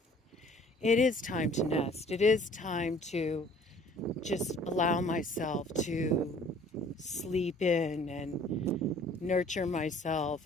It is time to nest. It is time to just allow myself to sleep in and nurture myself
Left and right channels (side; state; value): both; normal; correlation 0.54